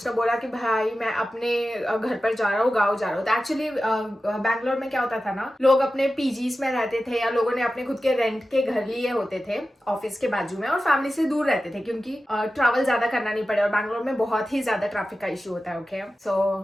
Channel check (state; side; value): normal; both; correlation 0.94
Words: बोला कि भाई मैं अपने घर पर जा रहा हूँ, गाँव जा रहा हूँ। तो एक्चुअली बैंगलोर में क्या होता था ना, लोग अपने पीजीज में रहते थे या लोगों ने अपने खुद के रेंट के घर लिए होते थे ऑफिस के बाजू में, और फैमिली से दूर रहते थे क्योंकि ट्रैवल ज्यादा करना नहीं पड़े, और बैंगलोर में बहुत ही ज्यादा ट्रैफिक का इशू होता है, ओके। सो